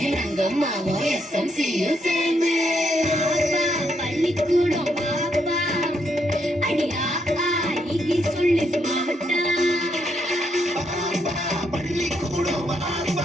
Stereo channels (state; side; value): normal; both; correlation 0.76